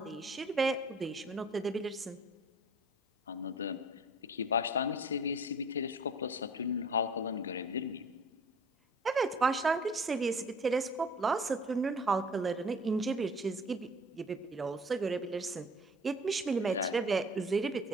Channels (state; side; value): normal; both; correlation 0.49